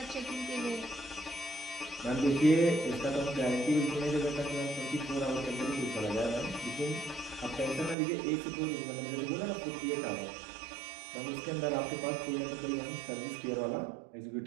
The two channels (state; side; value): drops out; left; at 8.0 s